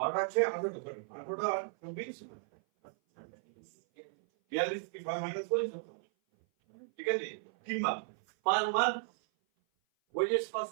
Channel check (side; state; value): left; silent; 54 dB below the other